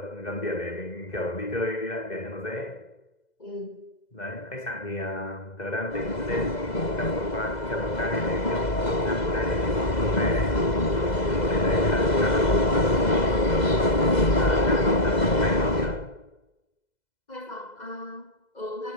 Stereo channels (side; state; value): right; late; 2.0 ms